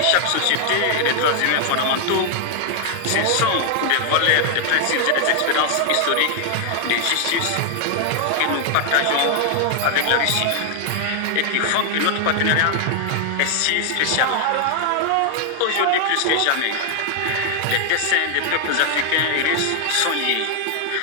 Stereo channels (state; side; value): different; both; correlation 0.00